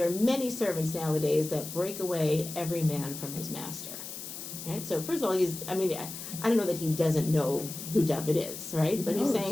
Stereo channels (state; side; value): noise; left; hiss, 9 dB below the sound